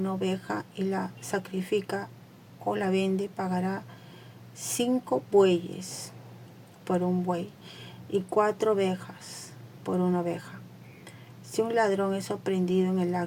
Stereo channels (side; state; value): both; identical; correlation 1.00